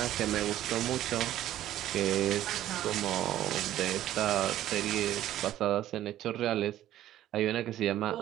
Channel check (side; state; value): left; quieter; 13.0 dB